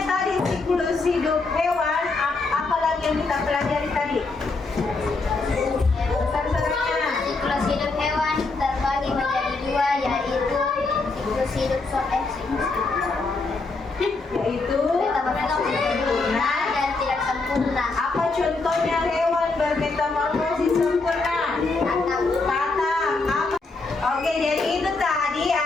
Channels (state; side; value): quieter; right; 3.7 dB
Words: tadi siklus hidup hewan, apa lagi yang kita pelajari tadi? Besar-besarnya. Siklus hidup hewan terbagi menjadi 2, yaitu siklus hidup Yaitu sempurna dan tidak sempurna. apa contohnya hewan bermetamorfosis sempurna? Kata apa? Oke, jadi itu tadi